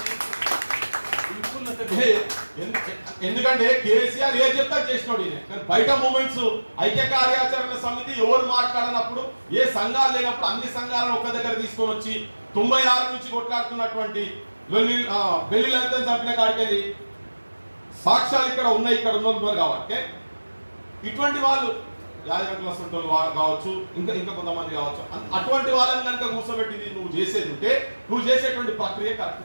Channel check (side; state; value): both; inverted; correlation -1.00